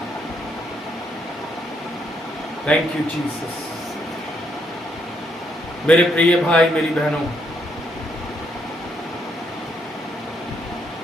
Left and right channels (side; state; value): both; normal; correlation 0.74